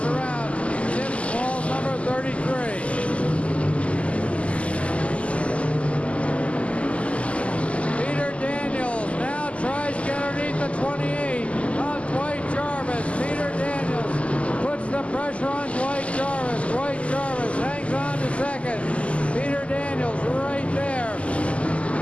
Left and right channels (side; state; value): right; late; 0.061 ms